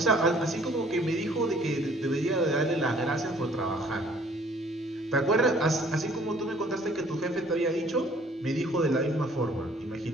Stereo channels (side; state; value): both; normal; correlation 0.57